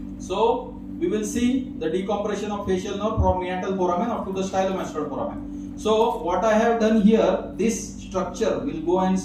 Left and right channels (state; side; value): identical; both; correlation 1.00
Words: So we will see the decompression of facial nerve from meatal foramen up to the stylomastoid foramen. So what I have done here, this structure, we'll go and